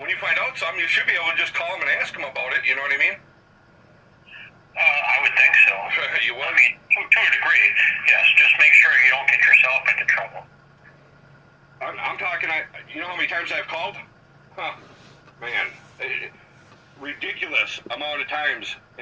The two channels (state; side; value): identical; both; correlation 1.00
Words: find out something, you should be able to just call them and ask them about it, you know what I mean? I would think so. You would? I mean, to a degree, yes. Just make sure you don't get yourself into trouble. I'm talking, you know how many times I've called? Huh, man, ridiculous amount of times,